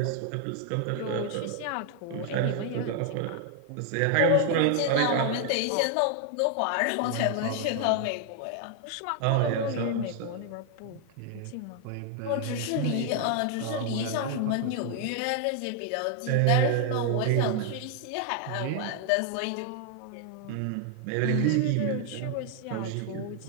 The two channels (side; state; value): both; different; correlation 0.00